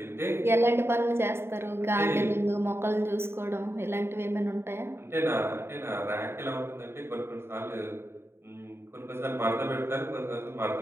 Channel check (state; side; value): late; left; 0.12 ms